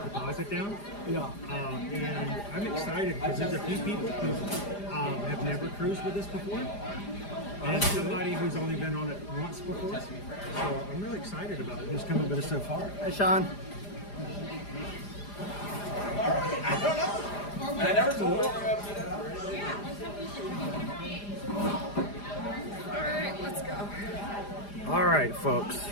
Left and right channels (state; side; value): late; right; 4.9 ms